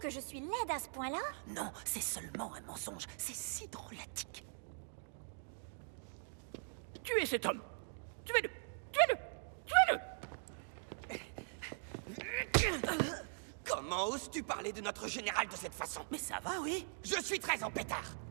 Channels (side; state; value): left; silent; digital silence